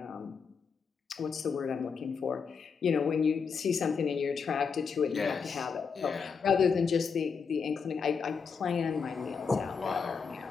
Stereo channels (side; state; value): right; quieter; 5.8 dB